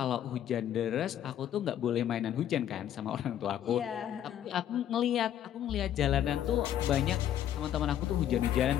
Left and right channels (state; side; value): quieter; right; 10.8 dB